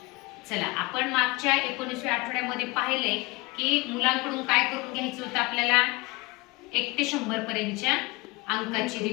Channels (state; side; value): quieter; right; 24.0 dB